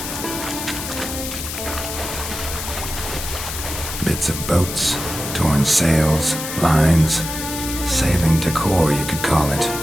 Bits of boats, torn sails, lines, sailing decor, you could call it.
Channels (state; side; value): noise; left; hiss, 7 dB below the sound